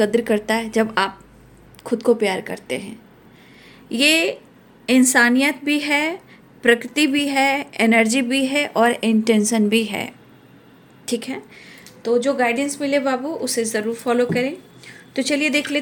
करता है, जब आप खुद को प्यार करते हैं। ये इंसानियत भी है, प्रकृति भी है, एनर्जी भी है और इंटेंशन भी है, ठीक है। तो जो गाइडेंस मिले बाबू, उसे ज़रूर फॉलो करें। तो चलिए देख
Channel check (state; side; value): identical; both; correlation 1.00